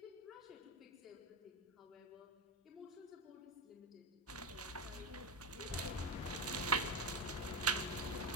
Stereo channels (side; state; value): both; normal; correlation 0.17